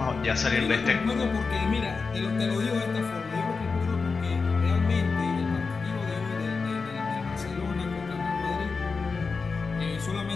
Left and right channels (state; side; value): quieter; right; 4.6 dB